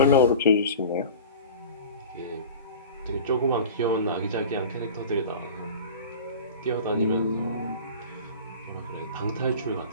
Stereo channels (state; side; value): inverted; both; correlation -0.37